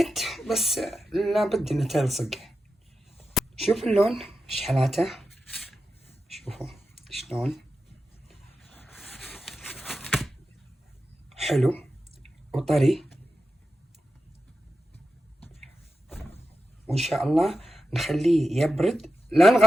بس لابد انها تلصق. شوف اللون ايش حالاته. شوفوا شلون حلو وطري. وان شاء الله نخليه يبرد. لا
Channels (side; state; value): both; normal; correlation 0.91